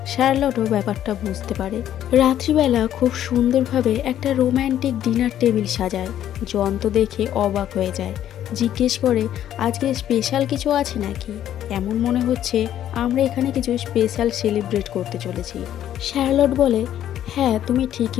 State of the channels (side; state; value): right; quieter; 11.2 dB